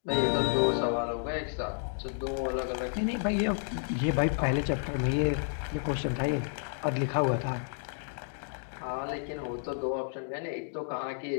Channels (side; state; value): right; silent; digital silence